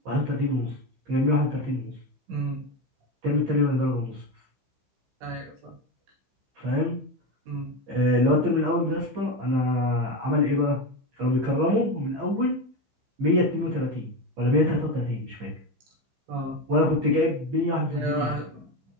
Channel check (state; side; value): late; left; 15 ms